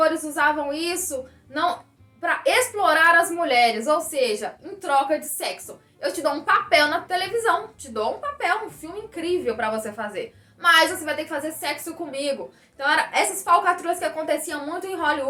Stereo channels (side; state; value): both; identical; correlation 1.00